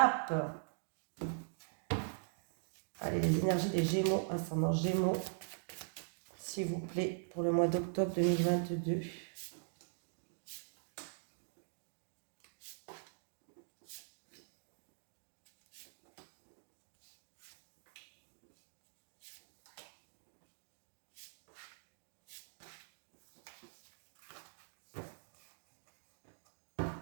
Allez, les énergies des Gémeaux, ascendant Gémeaux, s'il vous plaît, pour le mois d'octobre 2022.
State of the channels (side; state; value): left; silent; digital silence